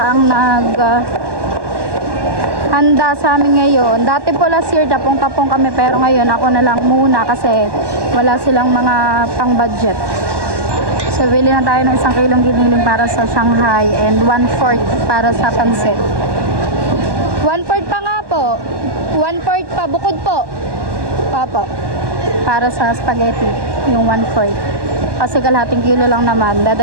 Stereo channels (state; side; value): late; left; 1.2 ms